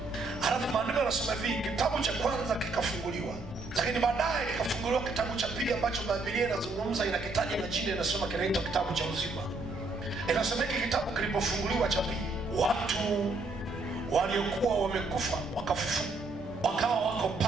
Halafu maandiko yanasema hivi, kitabu cha kwanza kikafunguliwa, lakini baadaye kikafunguliwa kitabu cha pili ambacho Biblia inazungumza, inakitaja na jina, inasema kinaitwa kitabu cha uzima. Inasema hiki kitabu kilipofunguliwa cha pili, watu waliokuwa wamekufa wakafufuka, wakawa wako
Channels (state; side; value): quieter; left; 3.3 dB